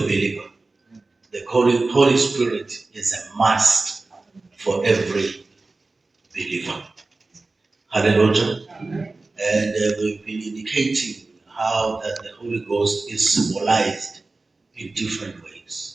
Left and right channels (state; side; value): quieter; left; 3.4 dB